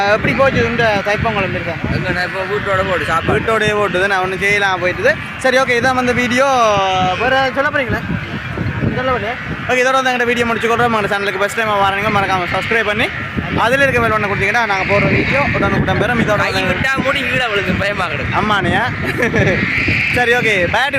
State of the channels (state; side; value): identical; both; correlation 1.00